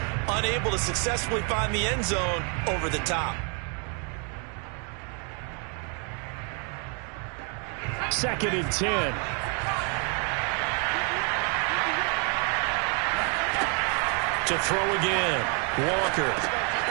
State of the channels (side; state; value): left; quieter; 37.9 dB